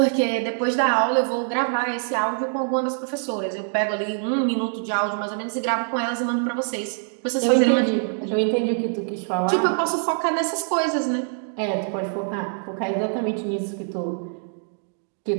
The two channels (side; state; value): left; silent; digital silence